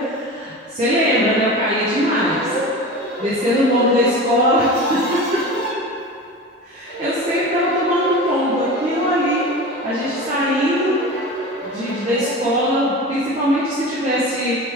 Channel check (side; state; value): both; normal; correlation 0.31